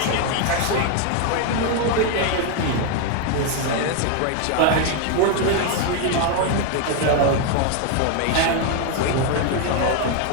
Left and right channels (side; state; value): both; different; correlation 0.01